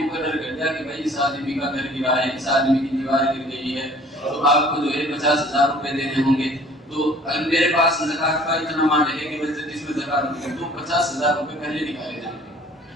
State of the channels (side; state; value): both; normal; correlation 0.52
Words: مقرر کر دیا کہ بھائی اس آدمی کا گھر گرا ہے، اس آدمی کی دیوار گر گئی ہے، تو آپ کو جو ہے 50,000 روپے دینے ہوں گے. تو اگر میرے پاس زکات کا اتنا مال ہے کہ جس میں زکات ہوگی تو 50,000 روپے پہلے نکالے جائیں